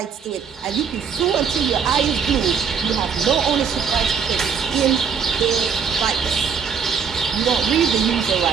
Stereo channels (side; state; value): left; quieter; 6.6 dB